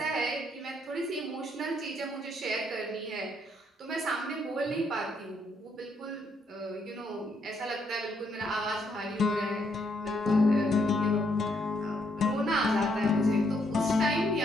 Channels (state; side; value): normal; both; correlation 0.73